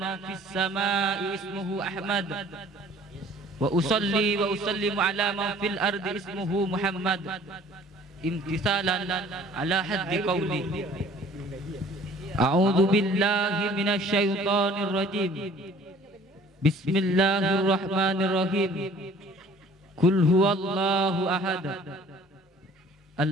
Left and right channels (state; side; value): normal; both; correlation 0.52